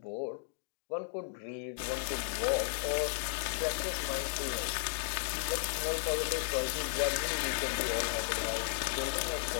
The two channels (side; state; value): right; silent; digital silence